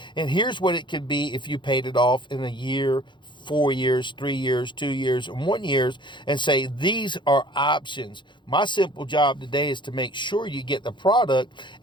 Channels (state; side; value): late; right; 0.23 ms